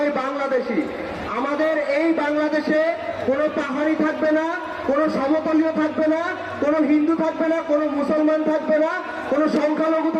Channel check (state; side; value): identical; both; correlation 1.00